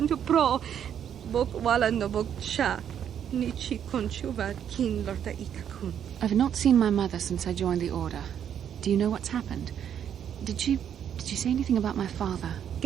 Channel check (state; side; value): quieter; left; 9.1 dB